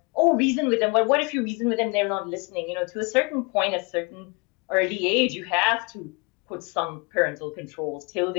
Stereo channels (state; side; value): quieter; right; 30.5 dB